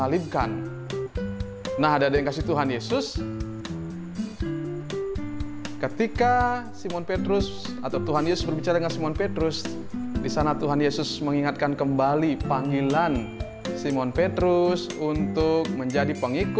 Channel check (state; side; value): identical; both; correlation 1.00